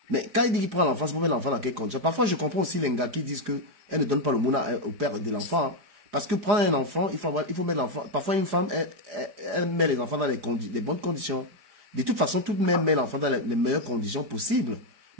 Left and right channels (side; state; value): left; late; 4.8 ms